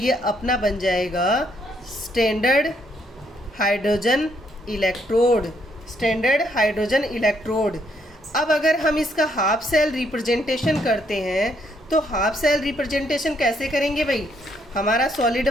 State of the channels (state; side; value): normal; both; correlation 0.72